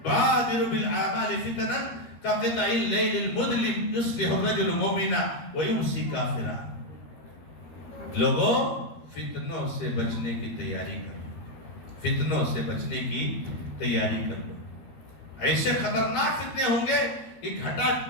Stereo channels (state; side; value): late; right; 13 ms